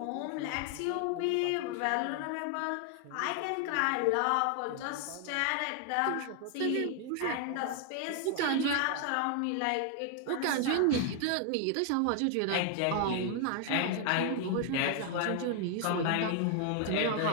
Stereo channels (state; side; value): different; both; correlation 0.00